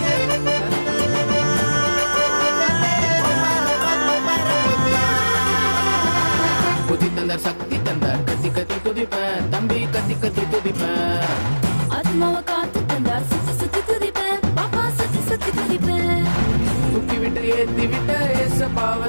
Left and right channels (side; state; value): both; inverted; correlation -1.00